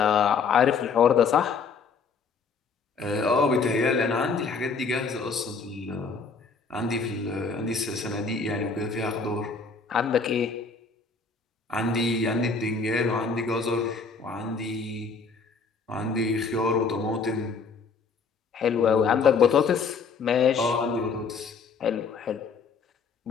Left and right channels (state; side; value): quieter; right; 5.0 dB